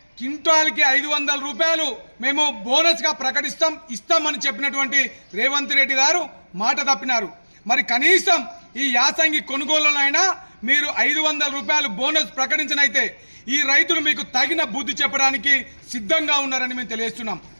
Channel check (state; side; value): inverted; both; correlation -1.00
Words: క్వింటాల్కి 500 రూపాయలు మేము బోనస్ గా ఇస్తామని చెప్పినటువంటి రేవంత్ రెడ్డి గారు మాట తప్పినారు। మరి కనీసం ఈ యాసంగి కొనుగోలులైనా మీరు 500 రూపాయలు బోనస్ ప్రకటించనైతే ఈ రైతులు మీకు తగిన బుద్ధి చెప్పడానికి సిద్ధంగా ఉన్నారని మేము తెలియజేస్తున్నాం।